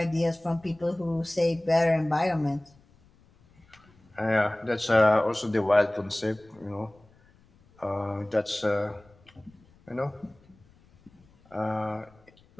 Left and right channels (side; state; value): left; noise; rumble, 30 dB below the sound